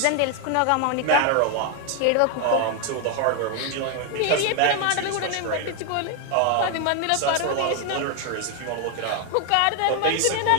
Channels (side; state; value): both; different; correlation 0.01